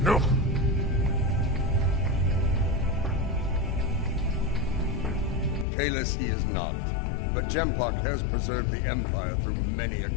Kalis he is not, but Jempak has preserved the Empire through many a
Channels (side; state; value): right; drops out; at 5.7 s